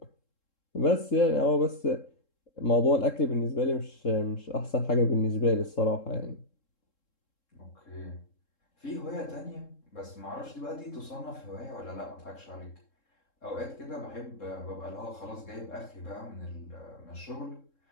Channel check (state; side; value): late; right; 3.7 ms